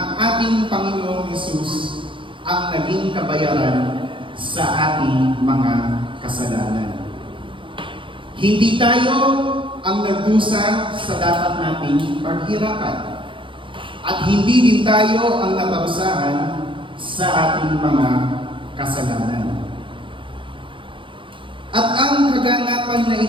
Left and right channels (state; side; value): late; left; 0.25 ms